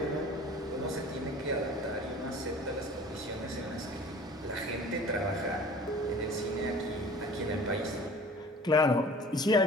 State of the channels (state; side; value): normal; both; correlation 0.45